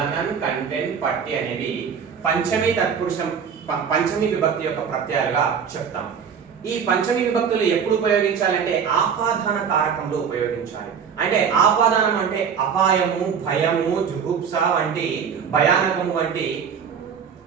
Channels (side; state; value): left; quieter; 7.0 dB